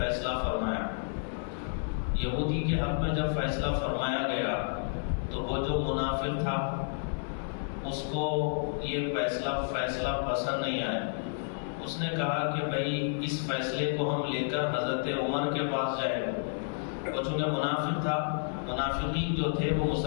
فرمایا. یہودی کے حق میں جب فیصلہ فرمایا گیا تو وہ جو منافق تھا اس کو یہ فیصلہ پسند نہیں آیا. اس نے کہا کہ بھائی اس فیصلے کو ہم لے کر حضرت عمر کے پاس جائیں. وہ چونکہ منافق تھا، منافقین جو تھے وہ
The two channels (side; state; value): right; silent; 57 dB below the other